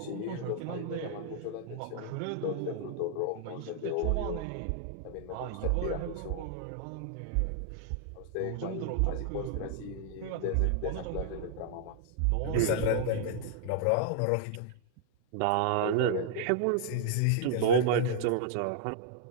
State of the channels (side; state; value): both; different; correlation -0.01